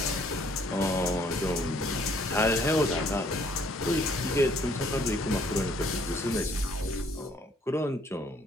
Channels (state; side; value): normal; both; correlation 0.63